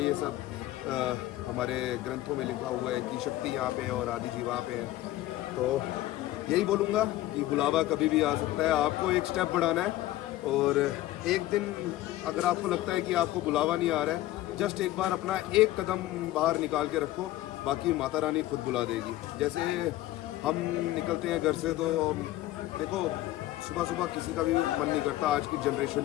ये सब हमारे ग्रंथों में लिखा हुआ है कि शक्ति यहाँ पे है और आदि जी वहाँ पे है। तो यही बोलूँगा कि बुलावा कभी भी आ सकता है, आपको एक स्टेप बढ़ाना है। और एक दिन अगर आपको लगता है कि आपको बुलावा नहीं आ रहा है, जस्ट एक बार अपना एक कदम बाहर निकाल के रखो, बाकी माता रानी खुद बुला देगी। जैसे हम निकलते हैं घर से, तो देखो सुबह सुबह किसी का भी मन नहीं करता आज की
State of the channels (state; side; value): quieter; right; 15.6 dB